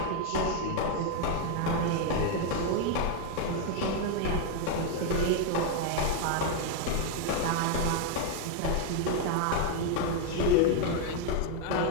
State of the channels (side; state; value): both; different; correlation 0.01